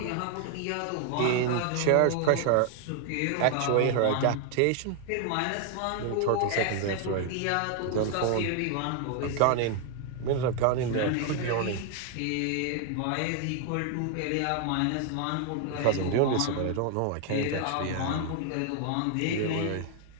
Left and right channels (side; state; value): both; different; correlation 0.00